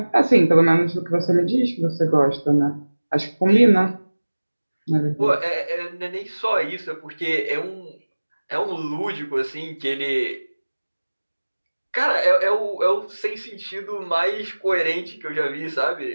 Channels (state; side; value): inverted; both; correlation -1.00